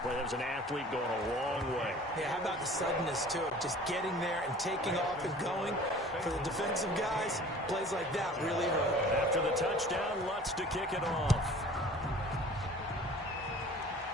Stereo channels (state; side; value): normal; both; correlation 0.46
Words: play. That was an athlete going a long way. Yeah, how about the suddenness, too? Just getting there and taking off and going. For the defensive guys, plays like that really hurt. After the touchdown, Lutz to kick it off.